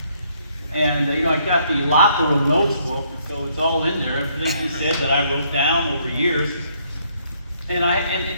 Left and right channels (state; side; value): inverted; both; correlation -0.68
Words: And I got the locker room notes book, so it's all in there, everything he said that I wrote down over years. And